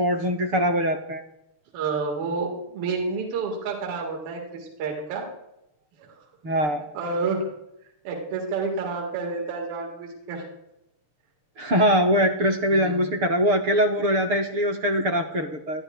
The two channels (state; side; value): late; left; 6.7 ms